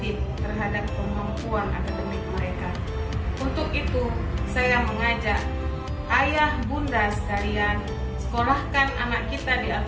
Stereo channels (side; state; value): both; identical; correlation 1.00